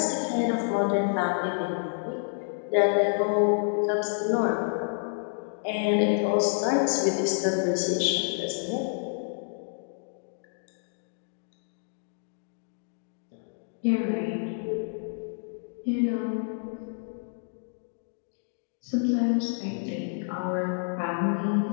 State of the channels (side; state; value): right; silent; digital silence